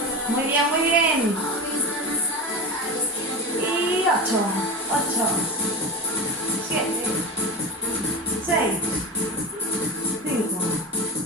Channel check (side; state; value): both; normal; correlation 0.25